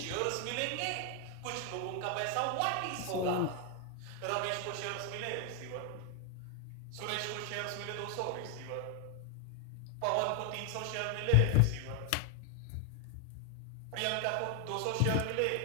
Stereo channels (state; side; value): different; both; correlation 0.00